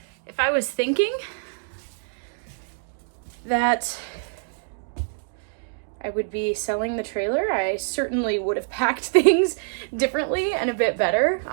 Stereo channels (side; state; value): left; silent; digital silence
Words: If I was thinking that I would be selling the trailer, I certainly would have packed things differently and a bit better.